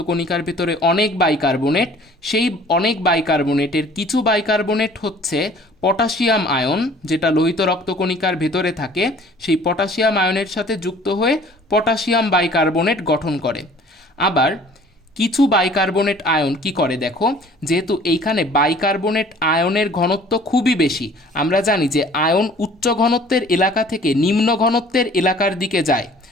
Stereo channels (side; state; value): both; normal; correlation 0.51